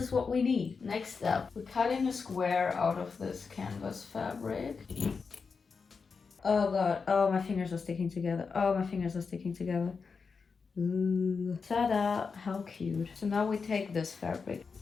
what we need. Next step, we're cutting a square out of this canvas fabric. Oh god, oh my fingers are sticking together. Oh, my fingers are sticking together. Ooh. Ta-da, how cute. So now we take this fabric.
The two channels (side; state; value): right; quieter; 5.1 dB